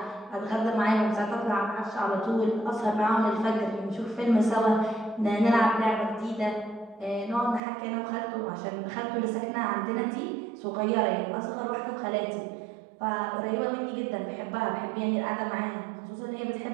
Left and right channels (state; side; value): drops out; left; at 7.6 s